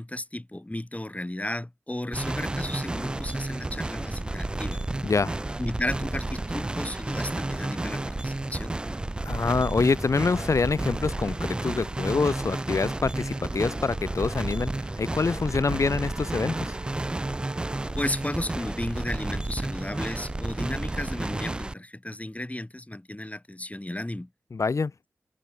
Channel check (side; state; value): both; normal; correlation 0.82